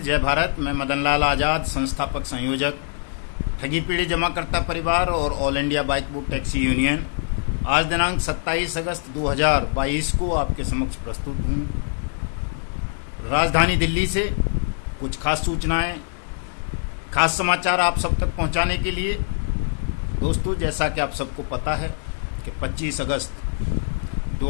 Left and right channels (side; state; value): right; silent; 63 dB below the other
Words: भारत। मैं मदन लाल आज़ाद, संस्थापक संयोजक ठगी पीढ़ी जमाकर्ता परिवार और all India bike book taxi union, आज दिनांक 27 अगस्त 2022 को आपके समक्ष प्रस्तुत हूँ। राजधानी दिल्ली से कुछ खास सूचनाएं, खास समाचार आप सब तक पहुंचाने के लिए। दोस्तों जैसा कि आप सबको पता है कि 25 अगस्त